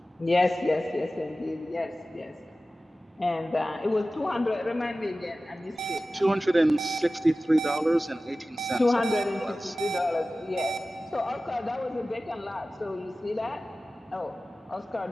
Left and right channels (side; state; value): both; normal; correlation 0.96